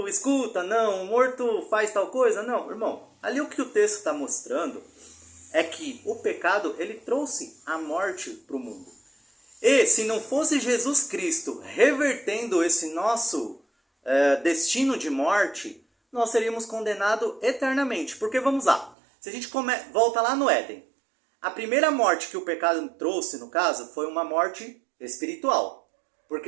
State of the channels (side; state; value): left; drops out; at 18.9 s